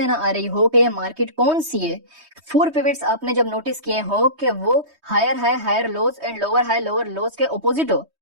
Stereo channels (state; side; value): late; left; 3.2 ms